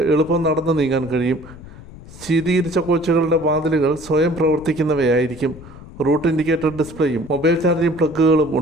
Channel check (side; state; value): left; noise; rumble, 18 dB below the sound